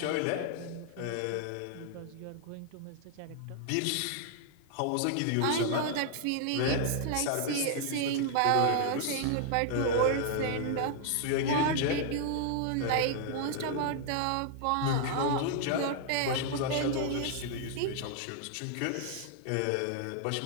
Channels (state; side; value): different; both; correlation -0.01